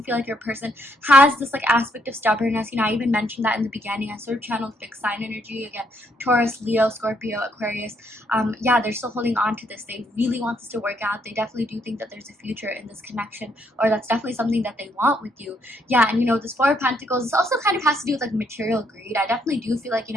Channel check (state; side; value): normal; both; correlation 0.73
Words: feel like your person has this like aspect of stubbornness. You know, I even mentioned that in the beginning. I sort of channeled fixed sign energy again. Taurus, Leo, Scorpio, Aquarius. Yeah, they're still holding on to this. They really want this to work out. They definitely do think that there's a future in this connection, or that's definitely something that they want with you. Yeah, and you know, this Four of Pentacles, this also kind of has to do with like material greed. I definitely do feel like, you